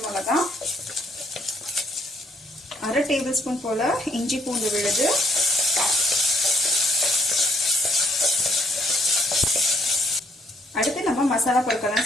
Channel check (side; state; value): both; normal; correlation 0.69